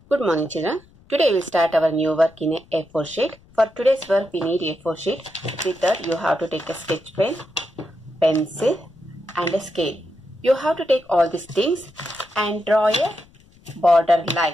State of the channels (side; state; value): left; noise; rumble, 28 dB below the sound